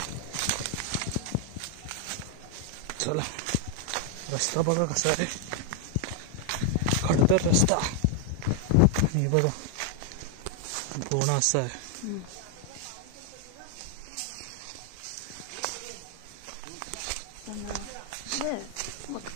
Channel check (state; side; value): different; both; correlation 0.00